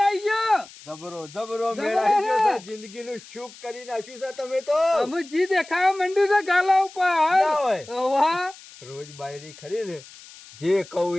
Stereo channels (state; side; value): noise; left; hiss, 20 dB below the sound